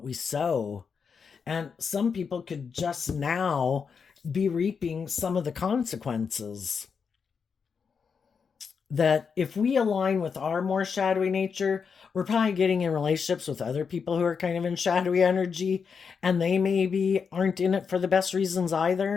we sow. And some people could just now be reaping some of the consequences. That if we align with our more shadowy nature, we're probably getting in relationships with other people who are kind of in shadowy energy, and they maybe aren't in it for the best reasons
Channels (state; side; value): quieter; right; 6.0 dB